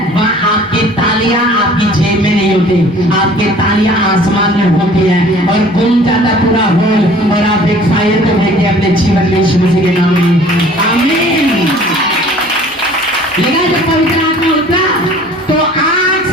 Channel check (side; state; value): both; normal; correlation 0.50